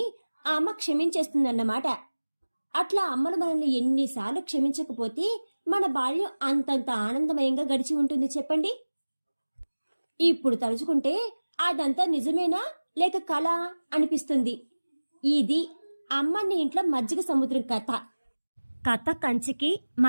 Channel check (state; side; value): inverted; both; correlation -1.00